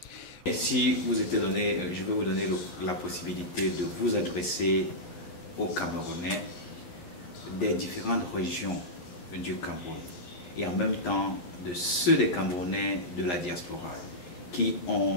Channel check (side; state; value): right; late; 11 ms